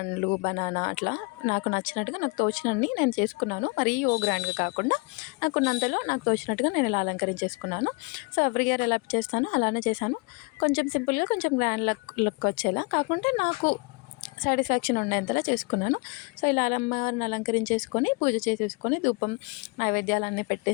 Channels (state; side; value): quieter; right; 29.5 dB